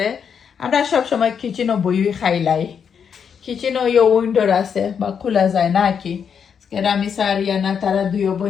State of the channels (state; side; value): quieter; right; 7.2 dB